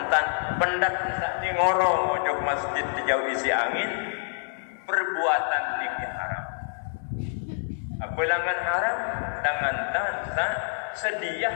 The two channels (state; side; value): silent; right; 60 dB below the other